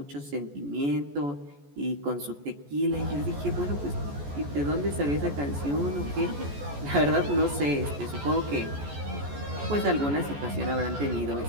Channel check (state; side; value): late; left; 14 ms